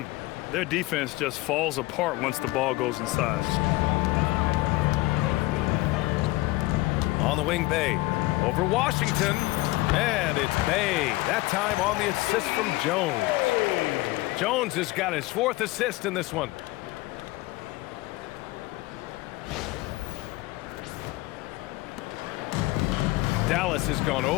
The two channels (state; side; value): quieter; right; 20.0 dB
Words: Their defense just falls apart once the ball goes inside. On the wing, Bay. Over Washington. And it's Bay. That time on the assist from Jones. Jones has got his 4th assist in this one. Dallas has gone